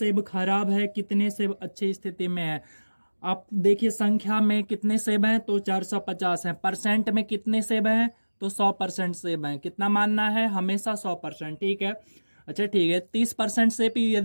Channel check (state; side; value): inverted; both; correlation -1.00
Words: खराब है, कितने सेब अच्छी स्थिति में है? आप देखिए संख्या में कितने सेब हैं तो 450 हैं, परसेंट में कितने सेब हैं तो 100% सेब हैं। कितना मानना है? हमेशा 100%। ठीक है, अच्छा ठीक है। 30% सेब